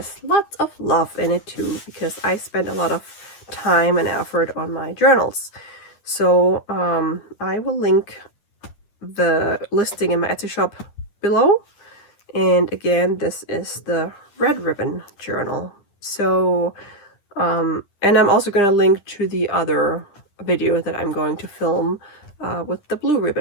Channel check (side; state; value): right; late; 10 ms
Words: lots of love in it too, because I spent a lot of time and effort on my journals. So I will link the listing in my Etsy shop below. And again, this is the red ribbon journal. So and I'm also going to link to the other video that I'm going to film with the blue